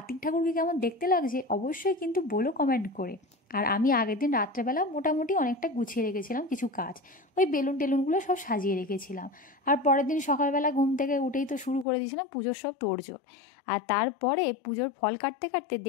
ঠাকুরকে কেমন দেখতে লাগছে অবশ্যই কিন্তু বলো কমেন্ট করে। আর আমি আগের দিন রাত্রেবেলা মোটামুটি অনেকটা গুছিয়ে রেখেছিলাম কিছু কাজ, ওই বেলুন টেলুনগুলো সব সাজিয়ে রেখেছিলাম। আর পরের দিন সকালবেলা ঘুম থেকে উঠেই তো শুরু করে দিয়েছিলাম পুজোর সব তোড়জোড়। আর তারপরে পুজোর ফল কাটতে কাটতে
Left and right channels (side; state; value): right; drops out; at 11.9 s